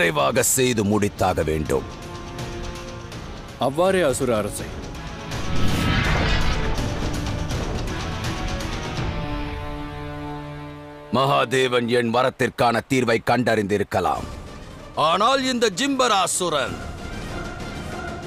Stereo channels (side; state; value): both; identical; correlation 1.00